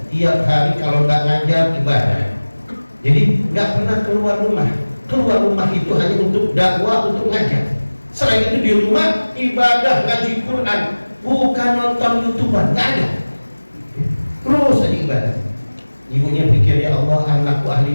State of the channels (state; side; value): inverted; both; correlation -1.00